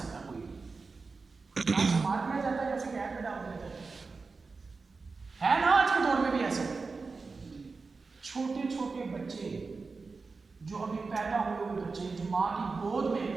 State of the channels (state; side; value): quieter; left; 4.3 dB